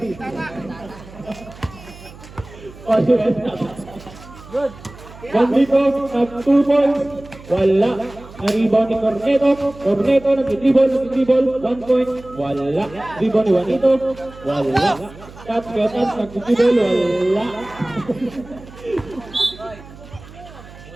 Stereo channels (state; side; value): noise; right; hum, 19 dB below the sound